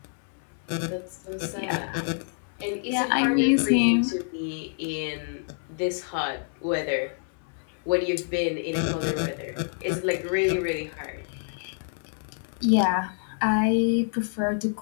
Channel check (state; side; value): silent; right; 60 dB below the other